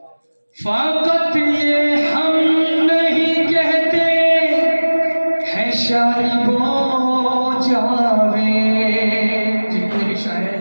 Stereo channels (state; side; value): inverted; both; correlation -1.00